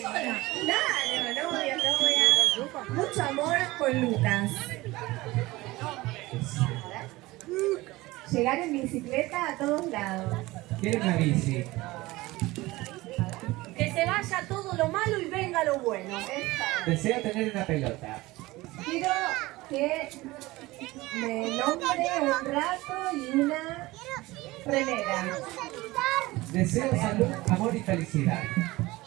sola. Claro, novia, novia. Mucho amor con Lucas. Llegar en bicicleta a todos lados. ¿Quiere una bici? Que se vaya todo lo malo y venga lo bueno. Deseo tener una pelota. Quiero que me nombre un rato y una remera. Deseo salud, amor y felicidad.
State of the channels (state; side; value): quieter; left; 19.8 dB